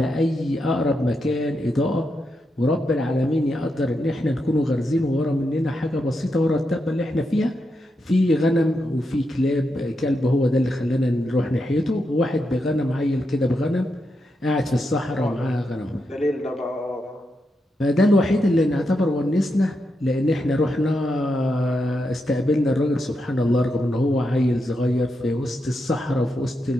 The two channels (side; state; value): both; normal; correlation 0.84